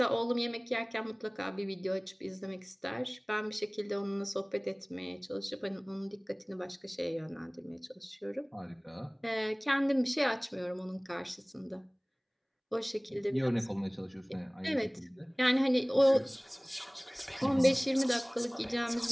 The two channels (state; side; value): identical; both; correlation 1.00